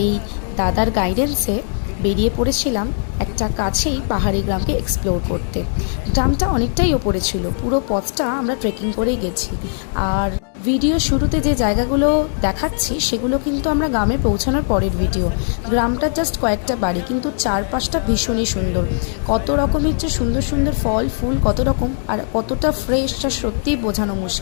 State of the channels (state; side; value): silent; right; digital silence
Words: দাদার গাইডেন্সে বেরিয়ে পড়েছিলাম একটা কাছেই পাহাড়ি গ্রামকে এক্সপ্লোর করতে। গ্রামটা অনেকটাই ওপরে ছিল, পুরো পথটা আমরা ট্রেকিং করেই গেছি। আর ভিডিও শুরুতে যে জায়গাগুলো দেখাচ্ছি সেগুলো কিন্তু আমরা গ্রামে পৌঁছানোর পরের ভিডিও। গ্রামটা জাস্ট কয়েকটা বাড়ি, কিন্তু চারপাশটা ভীষণই সুন্দর। কত রকমের যে সুন্দর সুন্দর ফল ফুল, কত রকম, আর কতটা ফ্রেশ তা সত্যিই বোঝানো